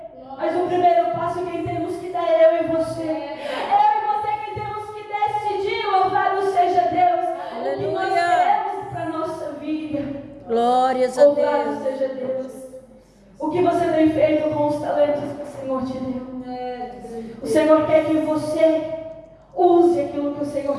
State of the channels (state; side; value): identical; both; correlation 1.00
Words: mas o primeiro passo quem temos que dar é eu e você. Eu e você quem temos que decidir. Louvado seja Deus. O que nós queremos para a nossa vida. Glórias a Louvado Deus. seja Deus. O que você tem feito com os talentos que o Senhor te deu? O Senhor quer que você use aquilo que o